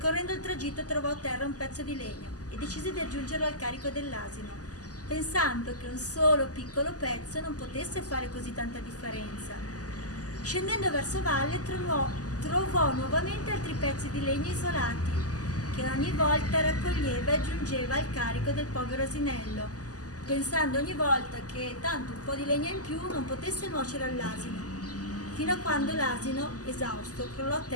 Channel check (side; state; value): right; late; 0.67 ms